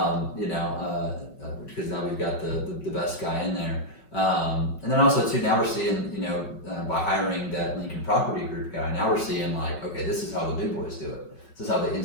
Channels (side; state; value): right; late; 5.3 ms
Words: now we've got the best guy in there. And then also too, now we're seeing, by hiring that Lincoln Property Group guy, now we're seeing like, okay, this is how the big boys do it. This is how the